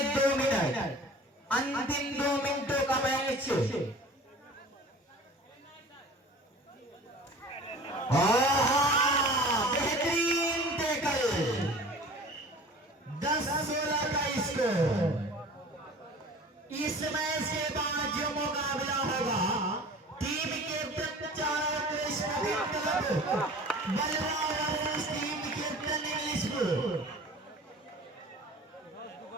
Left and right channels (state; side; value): normal; both; correlation 0.43